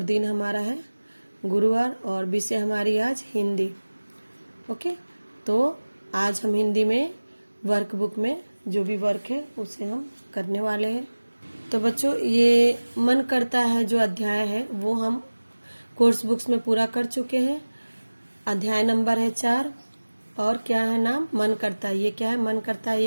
दिन हमारा है गुरुवार और विषय हमारी आज हिंदी। ओके, तो आज हम हिंदी में वर्कबुक में जो भी वर्क है उसे हम करने वाले हैं। तो बच्चों, ये मन करता है जो अध्याय है वो हम कोर्स बुक्स में पूरा कर चुके हैं। अध्याय नंबर है 4 और क्या है नाम, मन करता है। ये क्या है, मन करता है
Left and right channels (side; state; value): both; inverted; correlation -1.00